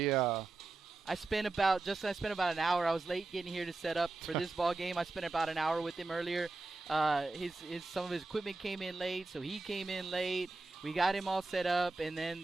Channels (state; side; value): quieter; left; 3.4 dB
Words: I spent about an hour. I was late getting here to set up for this ball game. I spent about an hour with him earlier. Some of his equipment came in late, so he came in late. We got him all set up, and